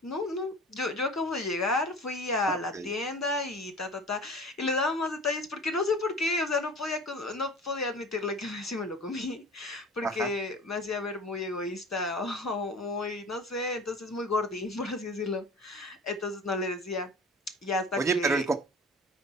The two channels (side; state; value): both; normal; correlation 0.39